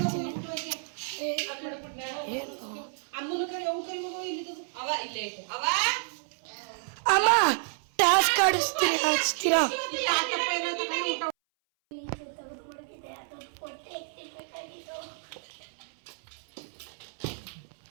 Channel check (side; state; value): left; silent; 58 dB below the other